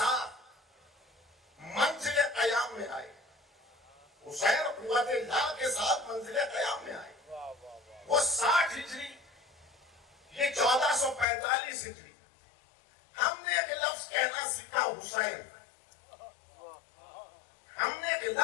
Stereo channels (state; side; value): drops out; right; at 11.2 s